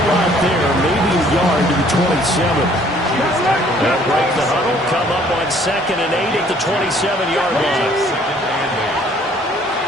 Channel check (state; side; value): normal; both; correlation 0.59